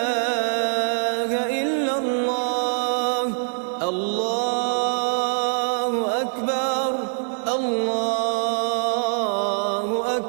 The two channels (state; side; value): silent; left; digital silence